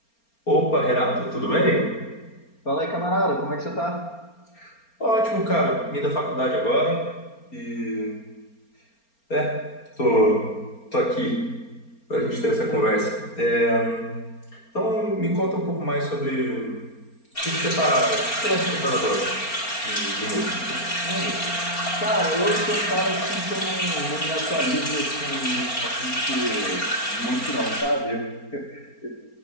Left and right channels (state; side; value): late; right; 4.3 ms